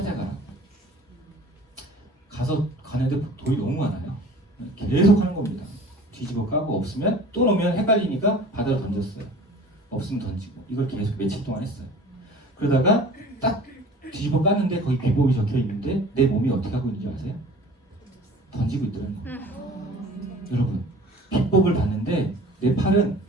가서 가는데 돌이 너무 많아요. 계속 하는 겁니다. 뒤집어 까고 없으면 또 놓으면 헷갈리니까 바다로 던졌어요. 없으면 던지고 이걸 계속 며칠 동안 했어요. 그러다가 딱 뒤집어 깠는데 거기 비법이 적혀 있는데 내 몸이 어떻게 하고 있는지 아세요? 던지고 있더라는 거예요. 여러분 비법을 봤는데 내 팔은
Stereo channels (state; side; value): normal; both; correlation 0.45